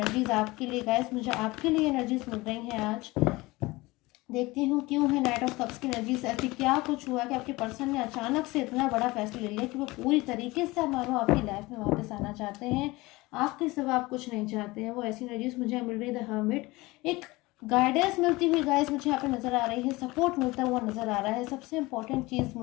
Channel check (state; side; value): quieter; right; 21.5 dB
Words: आपके लिए गाइस, मुझे आपके लिए एनर्जीज मिल रही हैं आज। देखती हूँ क्यों है नाइट ऑफ कप्स की एनर्जीज ऐसी। क्या कुछ हुआ कि आपके पर्सन ने अचानक से इतना बड़ा फैसला ले लिया कि वो पूरी तरीके से मानो आपकी लाइफ में वापस आना चाहते हैं, आपके सिवा आप कुछ नहीं चाहते हैं। वो ऐसी एनर्जीज मुझे मिल रही है। द हर्मिट, एक गाइडेंस मिलती हुई गाइस मुझे यहाँ पे नज़र आ रही है, सपोर्ट मिलता हुआ नज़र आ रहा है। सबसे इंपॉर्टेंट चीज़